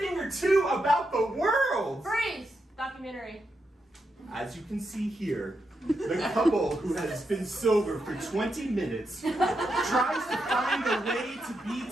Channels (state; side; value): normal; both; correlation 0.84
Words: or two about the world. Freeze! Documentary. As you can see here, the couple who has been sober for 20 minutes tries to find a way to be